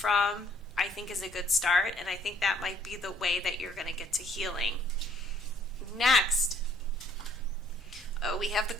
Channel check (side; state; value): both; normal; correlation 0.62